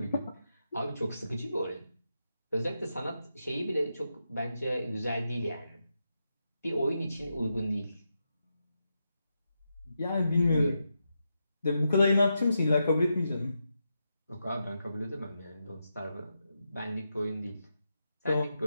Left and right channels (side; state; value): both; inverted; correlation -0.86